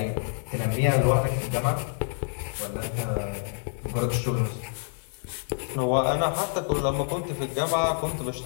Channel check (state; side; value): silent; right; digital silence